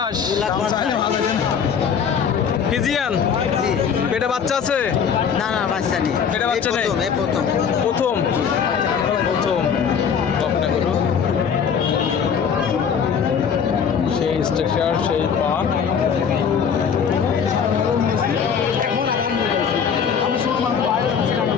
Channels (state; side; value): quieter; right; 7.0 dB